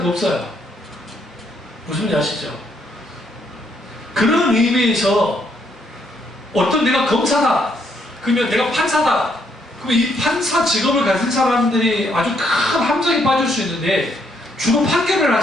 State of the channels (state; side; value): normal; both; correlation 0.73